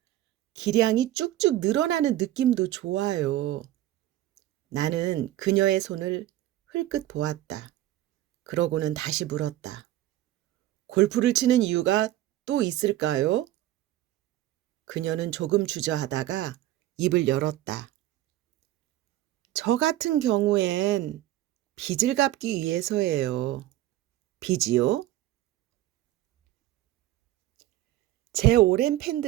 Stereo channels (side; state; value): left; quieter; 14.5 dB